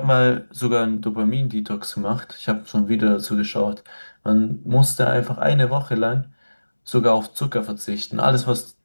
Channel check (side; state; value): both; inverted; correlation -1.00